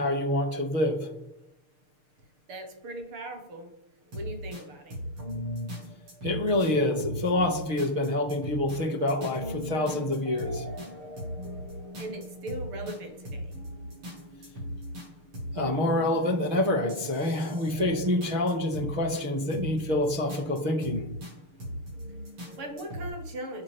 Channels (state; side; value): late; left; 6.6 ms